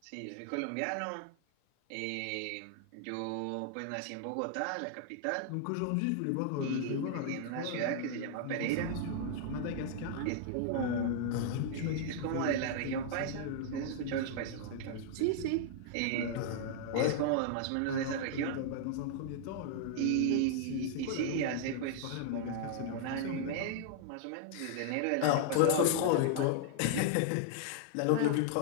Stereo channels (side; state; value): both; different; correlation -0.01